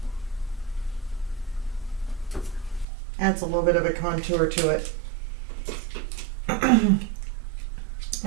Adds a little bit of a contour to it.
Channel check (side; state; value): left; drops out; at 2.9 s